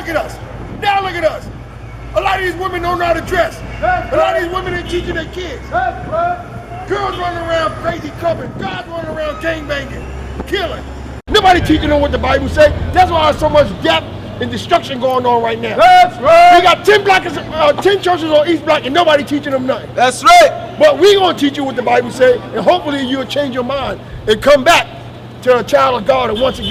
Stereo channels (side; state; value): both; identical; correlation 1.00